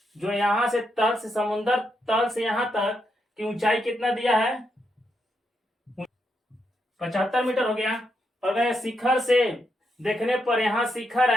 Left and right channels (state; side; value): normal; both; correlation 0.81